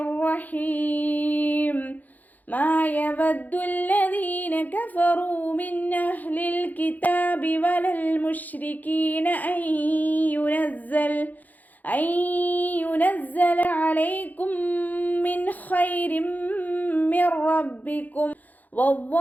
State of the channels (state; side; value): late; right; 0.082 ms